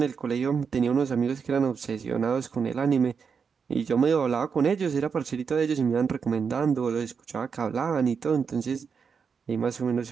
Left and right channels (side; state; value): left; quieter; 6.1 dB